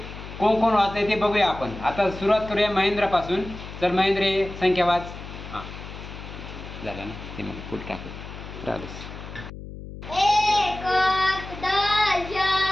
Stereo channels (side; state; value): left; noise; hum, 12 dB below the sound